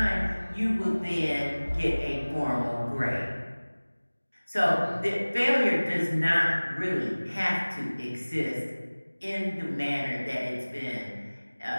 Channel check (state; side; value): inverted; both; correlation -1.00